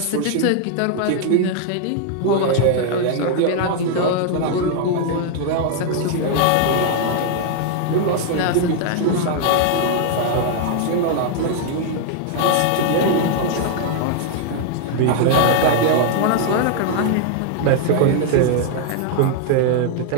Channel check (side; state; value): both; different; correlation 0.00